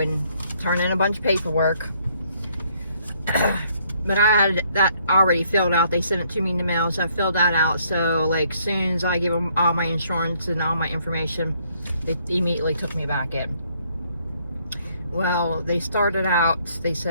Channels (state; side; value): inverted; both; correlation -0.67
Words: turn in a bunch of paperwork, but I had that already filled out. They sent it to me in the mail, so I filled that out. So like soon as I give them all my insurance and all my information, they immediately took me back in. Well, they started out, they